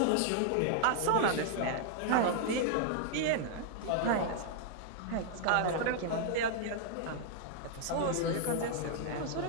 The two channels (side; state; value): both; different; correlation -0.01